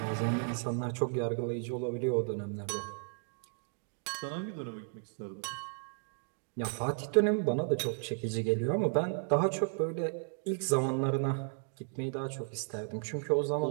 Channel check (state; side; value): silent; left; 55 dB below the other